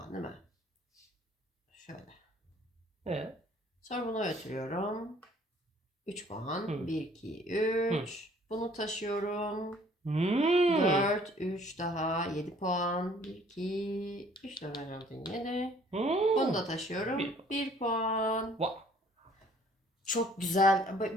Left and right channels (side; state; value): both; normal; correlation 0.57